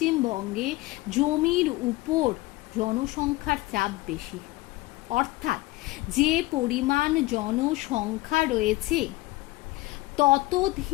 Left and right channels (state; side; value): quieter; right; 19.8 dB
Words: জমির উপর জনসংখ্যার চাপ বেশি, অর্থাৎ যে পরিমাণ জনসংখ্যা রয়েছে